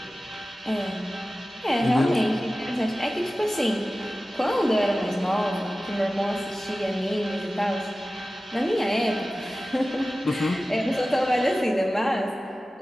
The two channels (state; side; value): normal; both; correlation 0.96